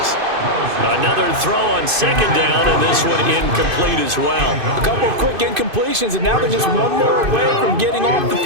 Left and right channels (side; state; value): left; late; 2.5 ms